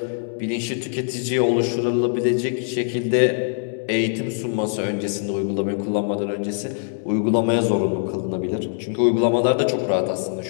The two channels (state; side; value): silent; right; digital silence